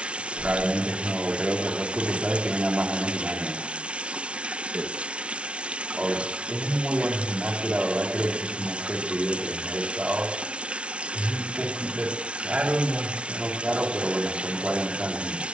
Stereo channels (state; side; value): late; left; 0.059 ms